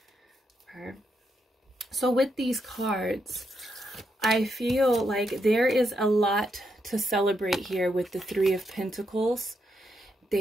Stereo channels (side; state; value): both; normal; correlation 0.81